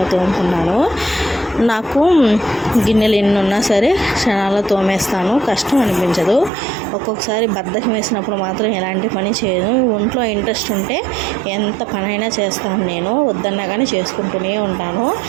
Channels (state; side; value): drops out; left; at 6.5 s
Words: తోముకున్నాను. నాకు గిన్నెలు ఎన్ని ఉన్నా సరే క్షణాల్లో తోమేస్తాను, కష్టం అనిపించదు. ఒక్కొక్కసారి బద్ధకం వేసినప్పుడు మాత్రం ఎలాంటి పని చేయను. ఒంట్లో ఇంట్రెస్ట్ ఉంటే ఎంత పనైనా చేస్తాను. నేను వద్దన్నా కానీ చేసుకుంటూనే ఉంటాను.